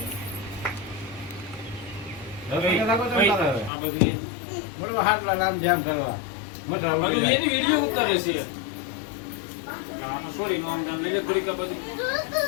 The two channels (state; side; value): drops out; right; at 3.7 s